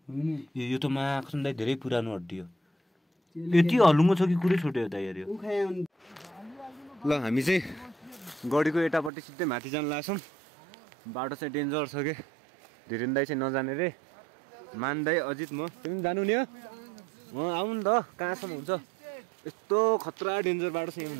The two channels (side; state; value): left; drops out; at 9.1 s